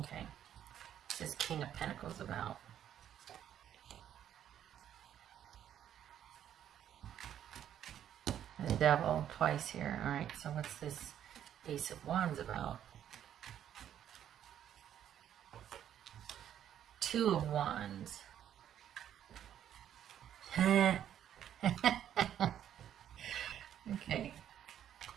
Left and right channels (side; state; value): left; quieter; 10.3 dB